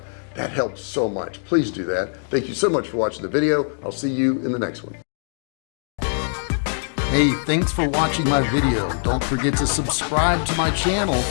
That helps so much. Please do that. Thank you so much for watching the video. I'll see you in the next one. Hey, thanks for watching my video. Don't forget to subscribe to my channel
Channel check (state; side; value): silent; right; 64 dB below the other